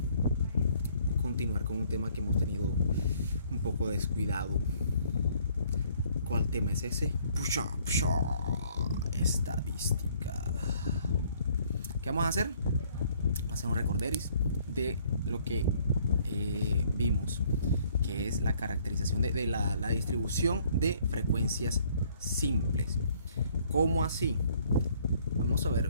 continuar con un tema que hemos tenido un poco descuidado. ¿Cuál tema es ese? Estadística. ¿Qué vamos a hacer? Vamos a hacer un recorderis de lo que vimos, que es la caracterización de la distribución de frecuencias simples. ¿Cómo así? Vamos a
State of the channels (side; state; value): both; inverted; correlation -0.62